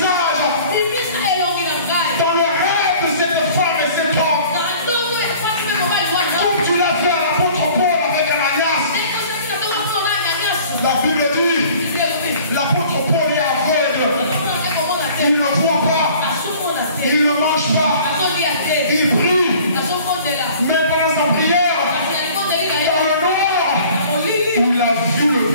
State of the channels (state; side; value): inverted; both; correlation -0.49